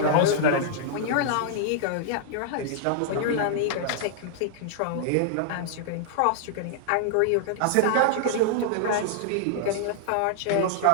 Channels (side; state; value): both; different; correlation -0.01